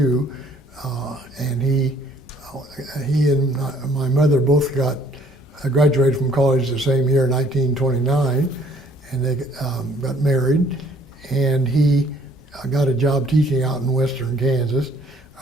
And he and my mother both graduated from college the same year, 1929, and they got married. And he got a job teaching out in western Kansas,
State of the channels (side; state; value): both; normal; correlation 0.60